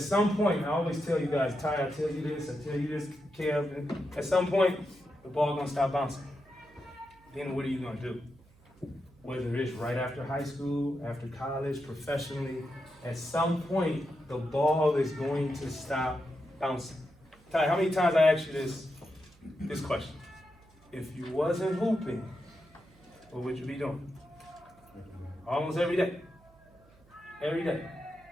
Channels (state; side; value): noise; right; hum, 28 dB below the sound